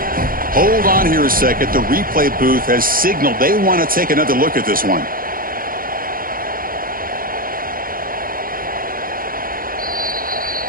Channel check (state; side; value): late; left; 0.41 ms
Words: Hold on here a second. The replay booth has signaled they want to take another look at this one.